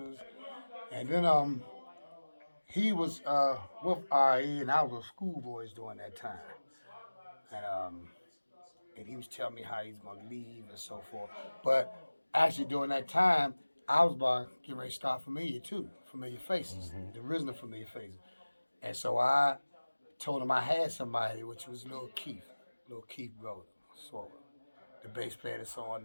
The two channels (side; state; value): both; inverted; correlation -1.00